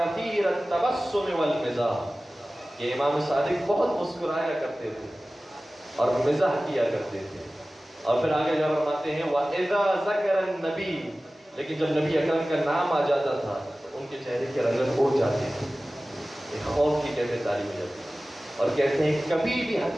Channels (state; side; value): normal; both; correlation 0.97